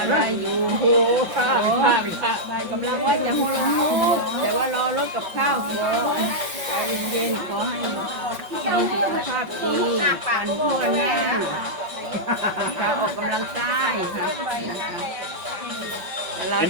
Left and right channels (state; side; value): late; left; 5.5 ms